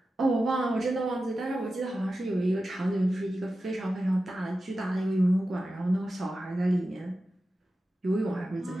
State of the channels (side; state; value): both; normal; correlation 0.93